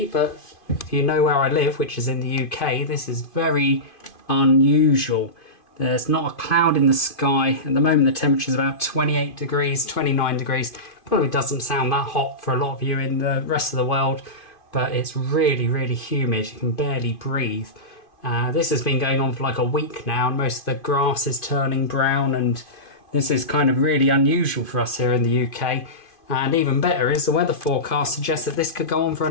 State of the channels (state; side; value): late; right; 2.5 ms